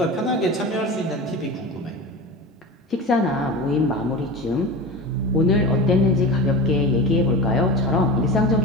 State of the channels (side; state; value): both; normal; correlation 0.30